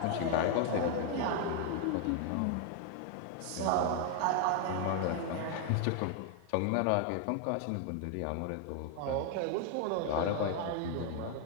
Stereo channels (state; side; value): different; both; correlation 0.00